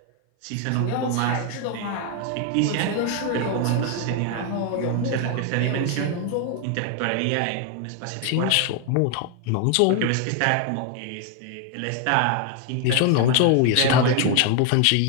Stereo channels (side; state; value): both; different; correlation 0.01